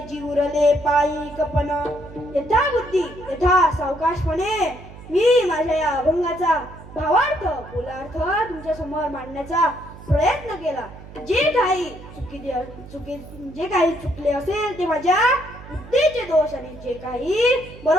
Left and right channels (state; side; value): noise; right; hum, 17 dB below the sound